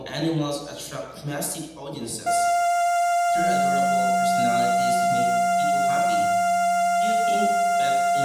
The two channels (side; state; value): both; identical; correlation 1.00